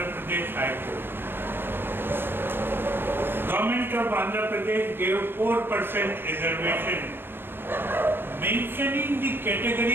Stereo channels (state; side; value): late; left; 0.10 ms